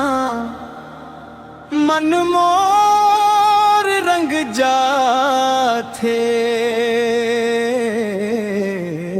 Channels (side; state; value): both; identical; correlation 1.00